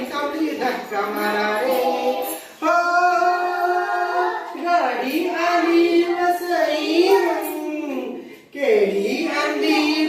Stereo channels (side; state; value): both; identical; correlation 1.00